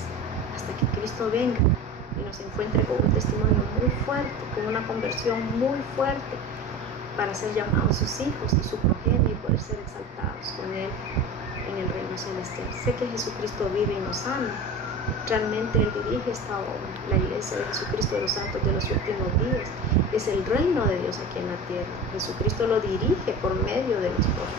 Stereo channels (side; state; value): both; normal; correlation 0.32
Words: hasta que Cristo venga y nos encuentre con un testimonio muy fuerte, con una conversión muy fuerte, para ser llamados sus hijos y su progenie y poder ser exaltados con Él en el reino celestial. Sé que Jesucristo vive y nos ama. Realmente Él dirige esta obra, la iglesia de Jesucristo de los santos de los últimos días. Es el reino de Dios aquí en la tierra. Jesucristo lo dirige por medio de los